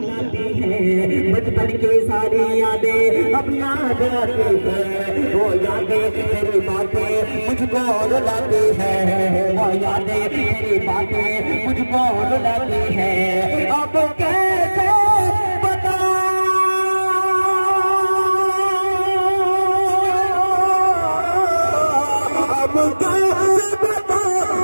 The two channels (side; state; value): both; inverted; correlation -1.00